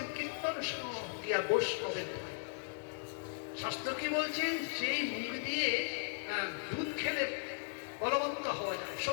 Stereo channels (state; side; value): silent; right; digital silence